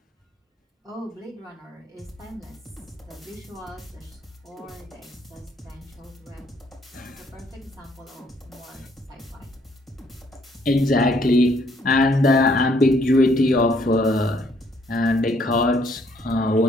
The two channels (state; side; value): normal; both; correlation 0.67